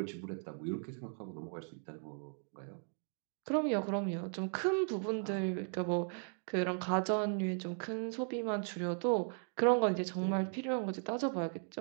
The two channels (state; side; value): silent; left; 53 dB below the other